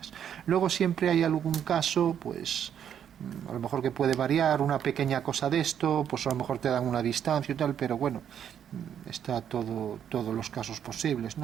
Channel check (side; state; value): left; quieter; 9.0 dB